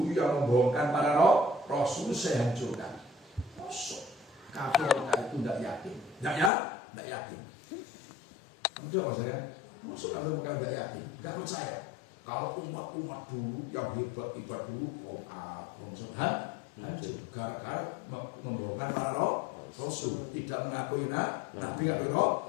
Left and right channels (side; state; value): right; drops out; at 6.5 s